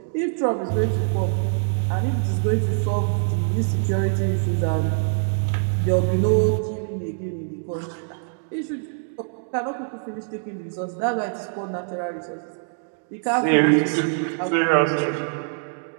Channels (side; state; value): left; silent; digital silence